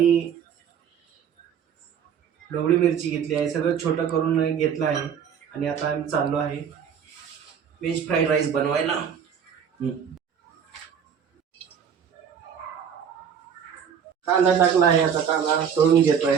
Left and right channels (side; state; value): left; quieter; 7.8 dB